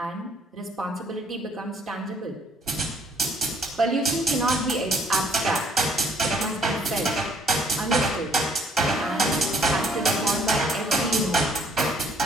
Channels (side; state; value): both; normal; correlation 0.62